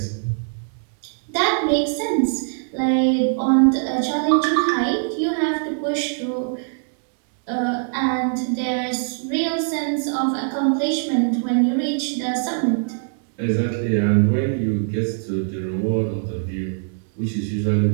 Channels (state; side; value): silent; left; digital silence